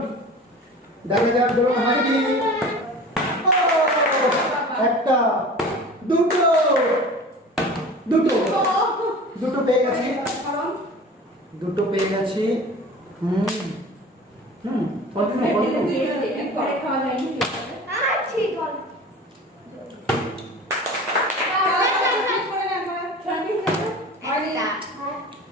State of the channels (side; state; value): both; normal; correlation 0.39